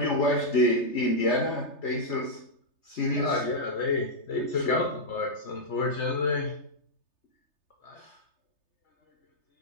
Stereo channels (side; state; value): right; late; 3.3 ms